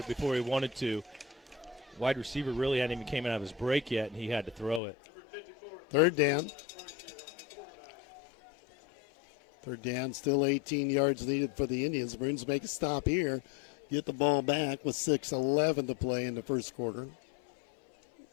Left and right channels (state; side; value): drops out; right; at 4.8 s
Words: before he wanted to. Wide receiver really hadn't even came out of his break yet, and he had to throw it. 3rd down. 3rd down, still 18 yards needed for the Indians. Maroons make a stop here. get the ball back with 6:11 to play in the first quarter.